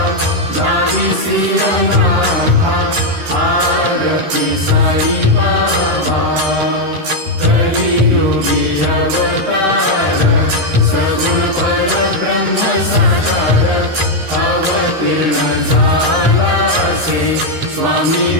दाविसी अनाथा। आरती साई बाबा कलियुगी अवतार, सगुण परब्रह्म साकार। अवतीर्ण झाला से स्वामी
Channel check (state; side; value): late; left; 13 ms